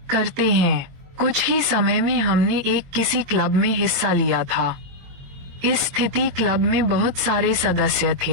करते हैं। कुछ ही समय में हमने किसी क्लब में हिस्सा लिया था। इस स्थिति क्लब में बहुत सारे सदस्य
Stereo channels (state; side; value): late; left; 22 ms